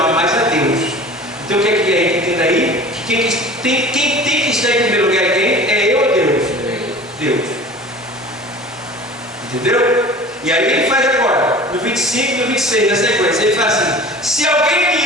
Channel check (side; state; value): both; normal; correlation 0.41